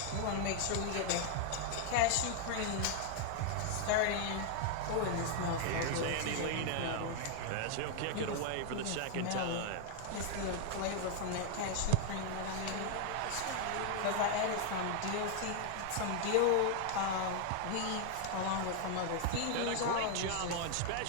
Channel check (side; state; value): both; different; correlation 0.00